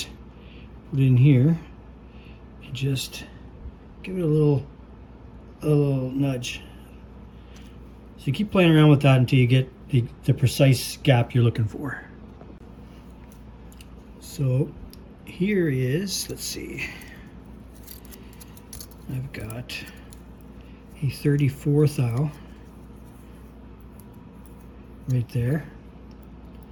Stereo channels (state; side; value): identical; both; correlation 1.00